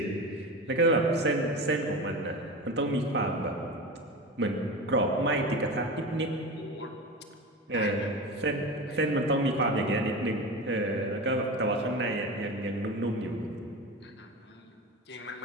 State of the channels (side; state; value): both; normal; correlation 0.27